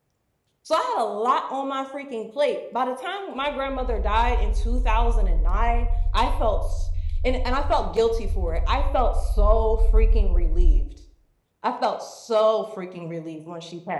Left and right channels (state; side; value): identical; both; correlation 1.00